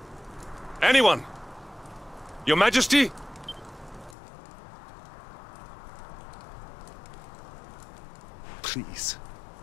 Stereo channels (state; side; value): drops out; right; at 4.2 s